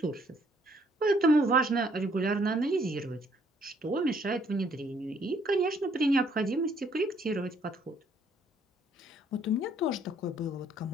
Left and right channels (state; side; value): normal; both; correlation 0.65